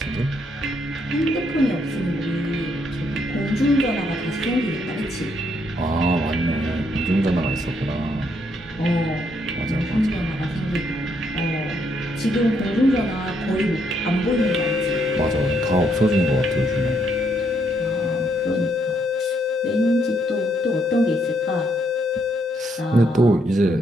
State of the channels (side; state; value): both; normal; correlation 0.74